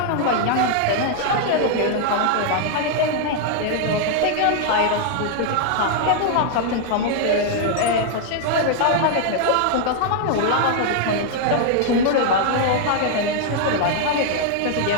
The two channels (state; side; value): different; both; correlation 0.00